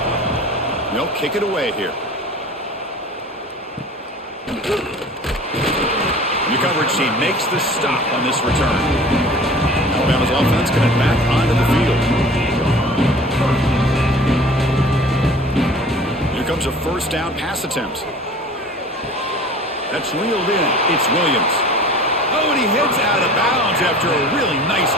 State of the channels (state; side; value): normal; both; correlation 0.44